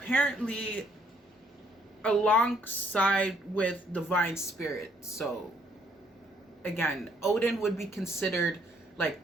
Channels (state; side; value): normal; both; correlation 0.67